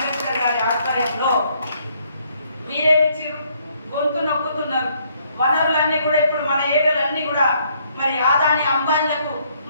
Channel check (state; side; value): inverted; both; correlation -0.68